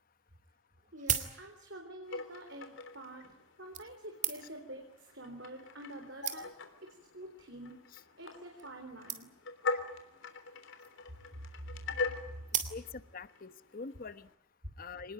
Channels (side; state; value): both; normal; correlation -0.07